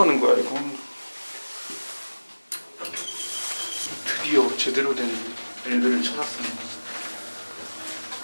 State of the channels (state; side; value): inverted; both; correlation -1.00